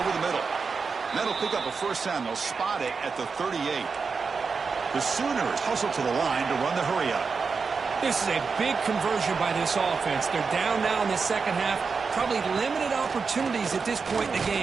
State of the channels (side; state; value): left; quieter; 5.1 dB